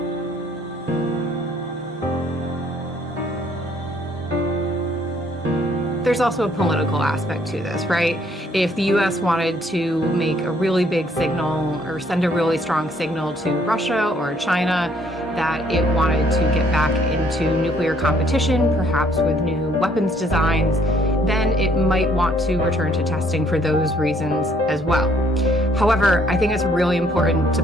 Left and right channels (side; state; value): both; normal; correlation 0.64